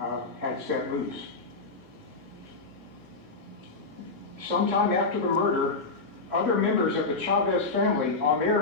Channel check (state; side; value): quieter; right; 3.8 dB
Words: had set loose. Sometime after the murder, other members of the Chavez family on